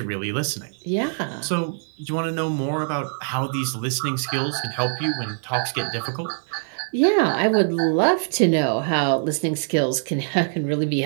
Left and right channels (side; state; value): left; silent; 60 dB below the other